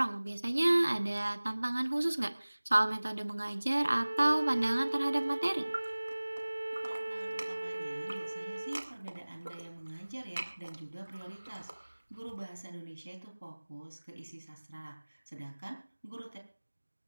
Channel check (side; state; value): both; inverted; correlation -1.00